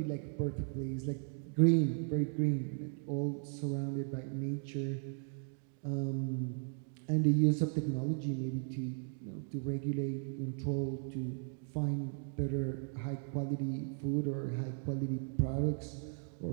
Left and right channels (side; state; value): left; silent; 53 dB below the other